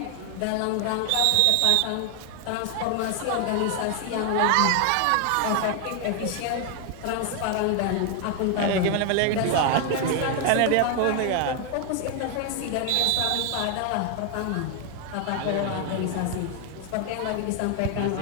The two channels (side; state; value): both; different; correlation 0.00